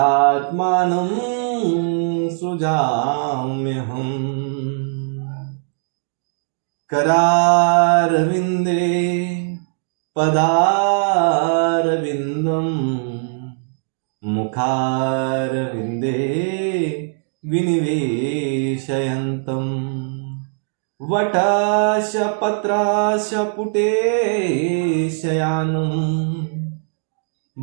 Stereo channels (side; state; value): left; silent; digital silence